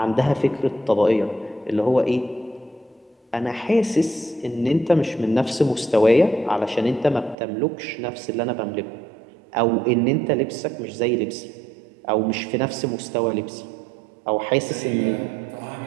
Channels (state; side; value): drops out; left; at 7.4 s